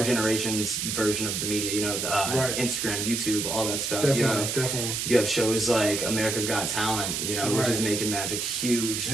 generation's version of the media, Instagram, YouTube, all that stuff. Definitely. You have shows like America's Got Talent, which is making magic huge.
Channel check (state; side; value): noise; right; hiss, 2 dB below the sound